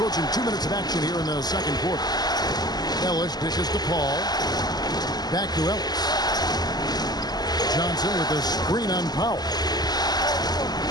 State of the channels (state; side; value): late; right; 0.20 ms